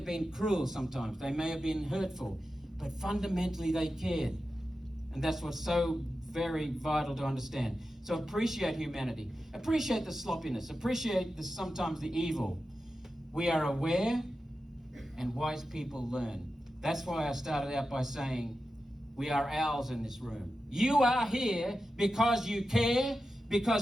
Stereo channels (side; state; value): both; normal; correlation 0.91